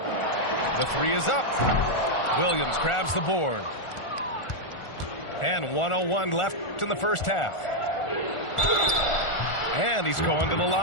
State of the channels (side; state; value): right; late; 1.4 ms